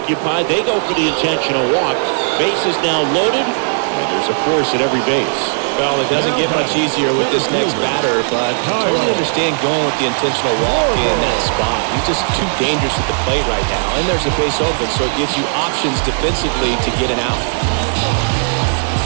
they go for the intentional walk. Base is now loaded, and there's a force at every base. Well, it doesn't get much easier with this next batter, but I totally understand going with the intentional walk in that spot. He's just too dangerous at the plate right now, and there's a base open, so it gives you options defensively to get an out.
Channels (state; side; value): silent; left; digital silence